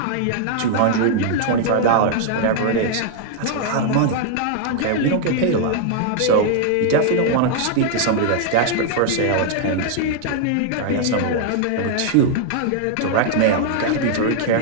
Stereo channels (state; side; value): different; both; correlation 0.00